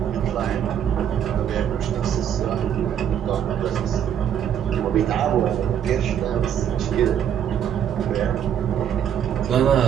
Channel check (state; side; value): quieter; left; 9.3 dB